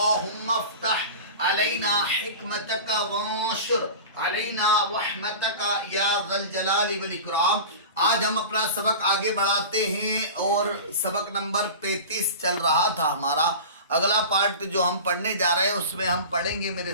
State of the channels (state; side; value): inverted; both; correlation -0.33